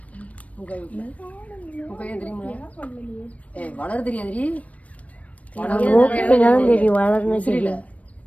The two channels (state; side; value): late; right; 0.067 ms